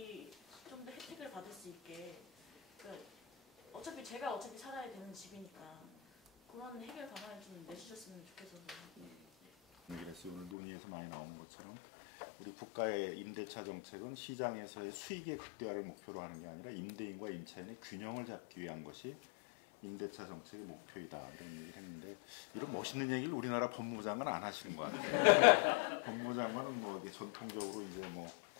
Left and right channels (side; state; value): right; drops out; at 10.5 s